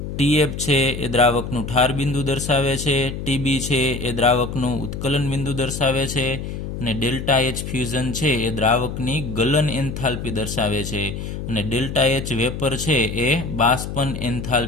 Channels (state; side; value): noise; left; hum, 6 dB below the sound